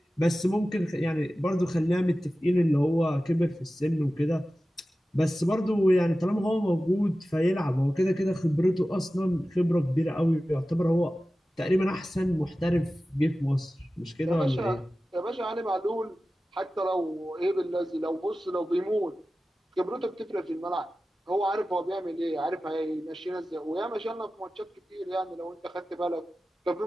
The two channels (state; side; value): normal; both; correlation 0.95